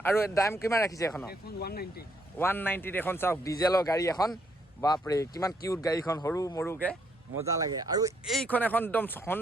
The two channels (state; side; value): normal; both; correlation 0.72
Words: আৰু দাম কিমান ৰাখিছে এখন 190 এখন চাওক ডিজেলৰ গাড়ী এখন বাপৰে কিমান কিউট গাড়ীখন সৰু মৰুকে মজা লাগে আৰু এইখন এখন একদম